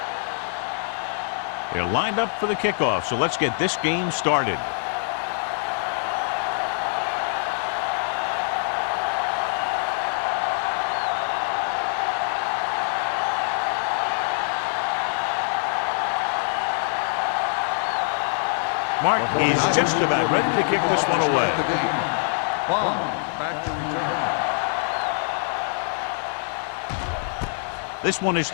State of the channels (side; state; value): right; silent; digital silence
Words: They're lined up for the kickoff, so let's get this game started. Mark is just about ready to kick this one away. Back to return. This one is